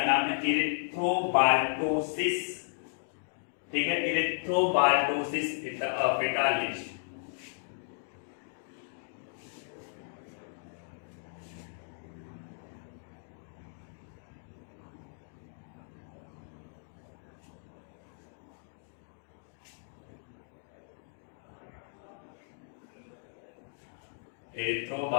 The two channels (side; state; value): right; silent; digital silence